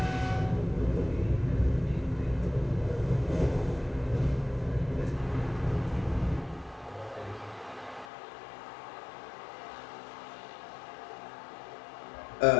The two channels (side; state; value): right; drops out; at 8.1 s